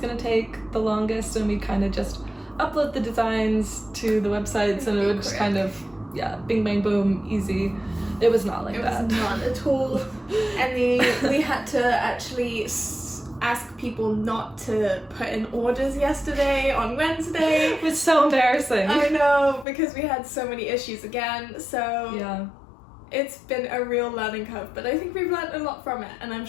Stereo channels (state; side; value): drops out; right; at 19.7 s